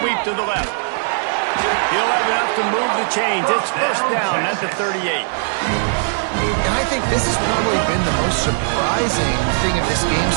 to the left. He'll have enough to move the chains. It's first down at the 38. And I think this has probably been the most surprising thing of this game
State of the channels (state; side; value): silent; left; digital silence